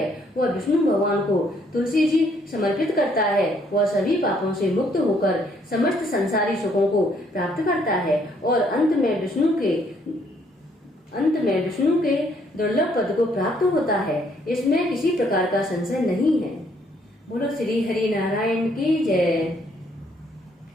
वह विष्णु भगवान को तुलसी जी समर्पित करता है, वह सभी पापों से मुक्त होकर समस्त संसारी सुखों को प्राप्त करता है और अंत में विष्णु के दुर्लभ पद को प्राप्त होता है। इसमें किसी प्रकार का संशय नहीं है। बोलो श्री हरि नारायण की जय।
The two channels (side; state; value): both; normal; correlation 0.67